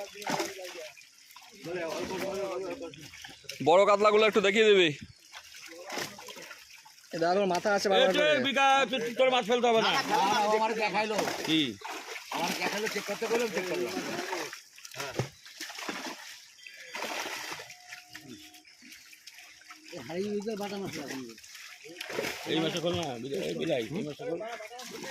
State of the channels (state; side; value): identical; both; correlation 1.00